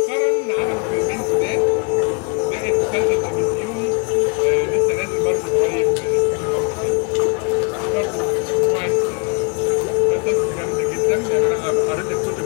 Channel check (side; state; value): right; quieter; 33.2 dB